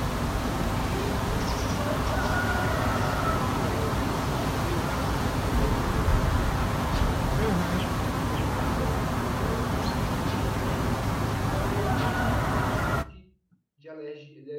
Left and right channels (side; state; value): both; identical; correlation 1.00